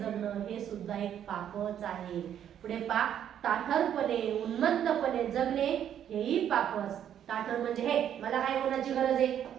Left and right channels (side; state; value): left; quieter; 9.8 dB